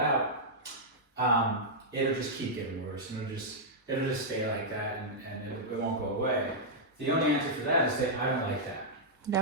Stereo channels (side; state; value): both; normal; correlation -0.08